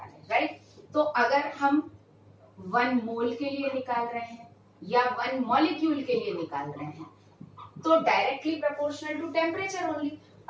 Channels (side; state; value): both; identical; correlation 1.00